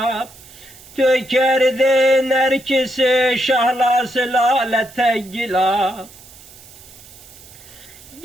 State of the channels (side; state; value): right; noise; hiss, 21 dB below the sound